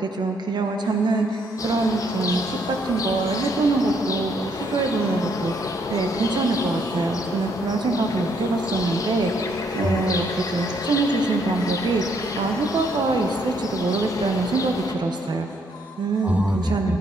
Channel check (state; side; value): normal; both; correlation 0.70